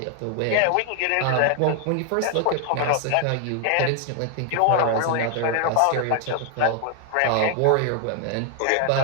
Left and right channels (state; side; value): different; both; correlation 0.00